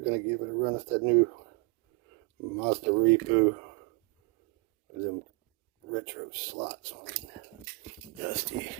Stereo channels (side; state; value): left; quieter; 29.3 dB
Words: to give it a run. It's that new Mazda Repo with them retro slots on it. Dusty.